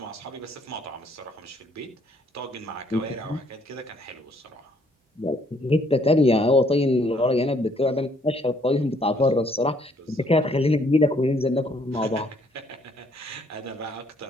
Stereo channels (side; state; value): both; normal; correlation 0.66